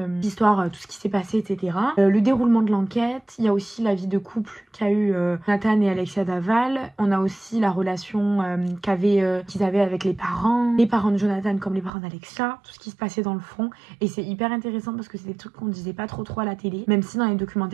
l'histoire, tout ce qui s'est passé, etc. Le déroulement de l'enquête. Il y a aussi la vie de couple qu'a eu Nathan et Alexia Daval. On a aussi la relation qu'ils avaient avec les parents de Jonathan comme les parents d'Alexia, tout ce qui se passait dans le fond. Et c'est hyper intéressant, parce que c'est des trucs qu'on disait pas trop à la télé, même si dans les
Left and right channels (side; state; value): left; drops out; at 11.9 s